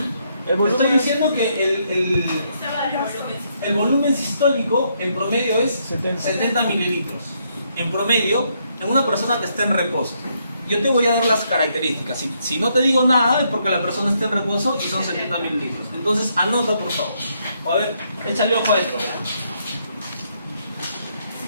Estoy diciendo que el volumen sistólico en promedio es 70 mililitros. En promedio, en una persona que está en reposo. Yo te voy a dar las características. Si no te digo nada es porque la persona está en reposo y son 70 mililitros. Entonces anota, por favor. O a ver, échale ojo a esto.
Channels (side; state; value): both; inverted; correlation -0.74